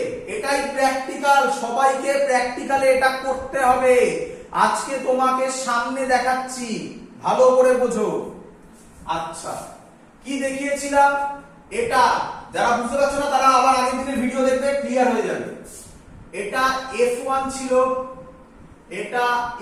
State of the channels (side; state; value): both; identical; correlation 1.00